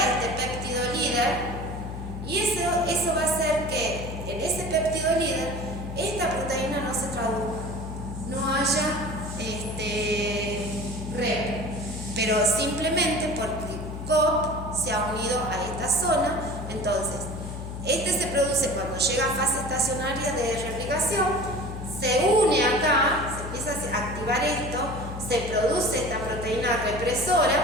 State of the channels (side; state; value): left; noise; hum, 8 dB below the sound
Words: péptido líder y eso va a hacer que en ese péptido líder esta proteína no se traduzca, no haya REP, pero simplemente porque COP se ha unido a esta zona. Entonces, se produce cuando llega a fase estacionaria de replicación, se une acá, se empieza a activar esto, se produce esta proteína represora,